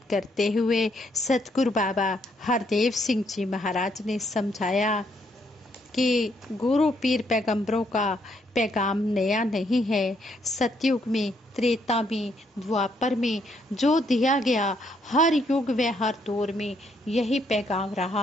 करते हुए सतगुरु बाबा हरदेव सिंह जी महाराज ने समझाया कि गुरु पीर पैगंबरों का पैगाम नया नहीं है। सतयुग में, त्रेता में, द्वापर में जो दिया गया, हर युग व हर दौर में यही पैगाम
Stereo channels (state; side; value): normal; both; correlation 0.72